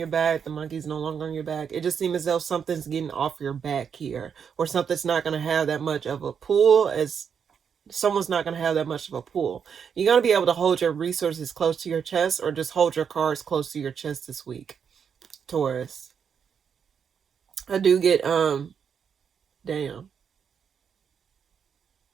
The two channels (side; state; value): left; quieter; 7.1 dB